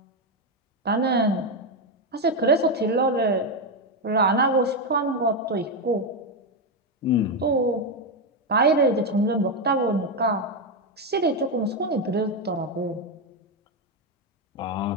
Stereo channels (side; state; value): both; normal; correlation 0.07